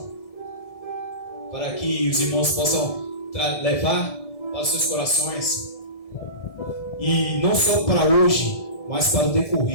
para que os irmãos possam levar para os seus corações, e não só para hoje, mas para o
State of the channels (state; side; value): late; right; 1.7 ms